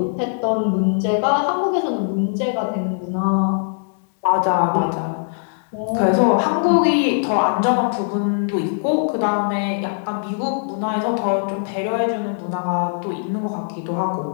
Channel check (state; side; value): silent; right; digital silence